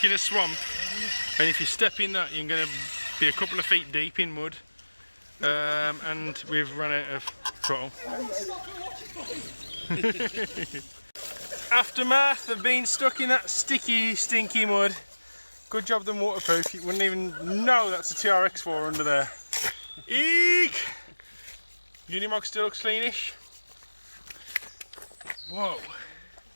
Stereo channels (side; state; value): both; inverted; correlation -1.00